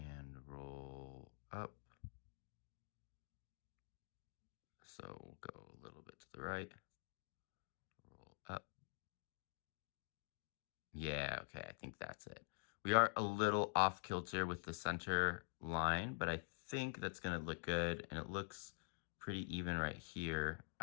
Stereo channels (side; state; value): right; silent; digital silence